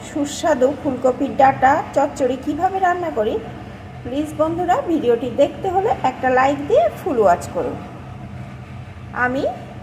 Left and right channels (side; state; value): both; identical; correlation 1.00